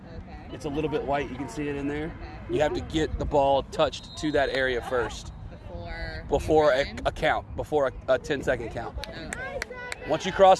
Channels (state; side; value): identical; both; correlation 1.00